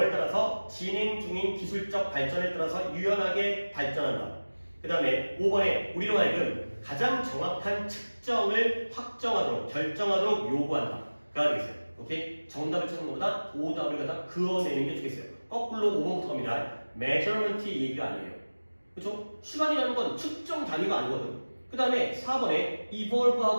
따라서 진행 중인 기술적 발전에 따라서 유연하게 발전한다. 그 다음에 5번에 우리로 하여금 가장 정확한 측정을 확정하도록 결정하도록 요구한다. 가 되겠어요. 오케이? 정답을 찾는 것보다 오답을 갖다 그어내는 게 좋겠어요. 거꾸로 5번부터 갑니다. measurement 얘기가 아니에요. 그렇죠? 시간이라는 건 측정 단위가 아니거든. 그 다음에 4번에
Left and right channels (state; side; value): inverted; both; correlation -1.00